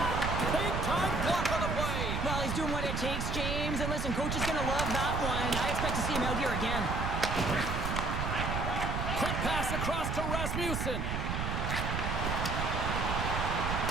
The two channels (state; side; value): noise; right; rumble, 1 dB below the sound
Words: Big time block on the play. Well, he's doing what it takes, James. And listen, coach is going to love that one. I expect to see him out here again. Quick pass across to Rasmussen.